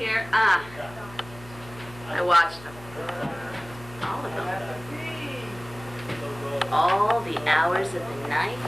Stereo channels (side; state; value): left; noise; hum, 19 dB below the sound